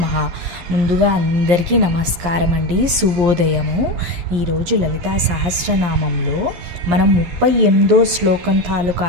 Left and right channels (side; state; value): left; late; 11 ms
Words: ముందుగా అందరికీ నమస్కారం అండి, శుభోదయము. ఈరోజు లలితా సహస్రనామంలో మనం 38వ శ్లోకం తాలూకా